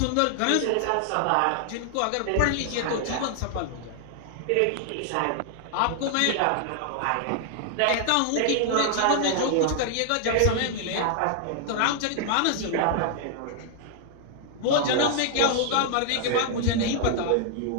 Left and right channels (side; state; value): both; different; correlation 0.00